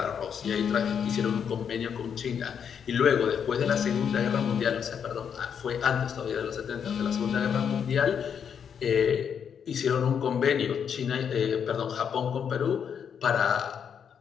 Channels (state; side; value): quieter; right; 7.6 dB